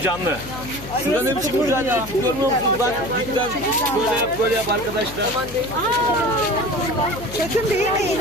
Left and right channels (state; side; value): noise; left; hum, 13 dB below the sound